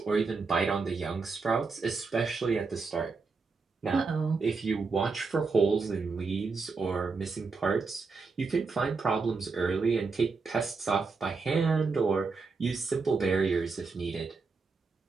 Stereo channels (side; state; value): left; quieter; 4.5 dB